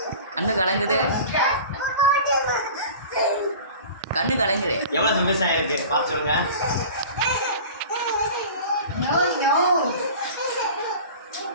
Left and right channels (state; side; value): inverted; both; correlation -0.38